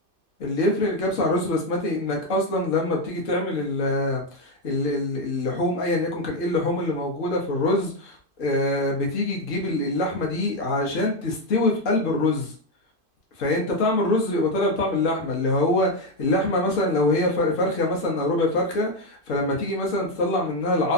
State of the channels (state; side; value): late; right; 2.5 ms